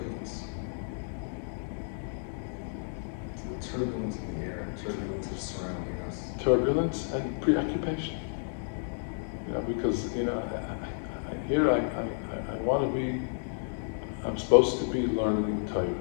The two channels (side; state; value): right; silent; digital silence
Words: It's the turbulence in the air, turbulence is surrounding us. Turbulence and preoccupation. Because I want to be. I'm supposed to be learning Torah.